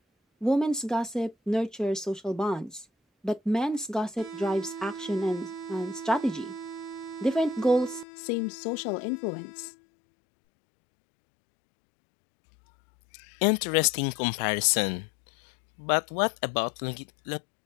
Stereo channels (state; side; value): drops out; right; at 8.1 s